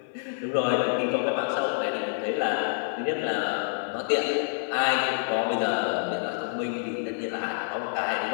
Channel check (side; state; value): right; silent; 55 dB below the other